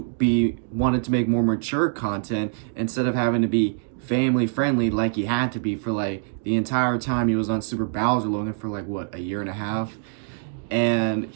make more mature content instead of having to be family friendly like he had to be for like the entire time he was on Super Bowser Logan for like what, a year and a half. And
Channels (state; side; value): silent; left; 62 dB below the other